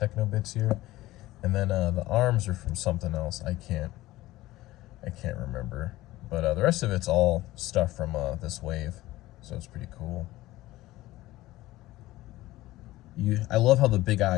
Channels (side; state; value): right; quieter; 17.2 dB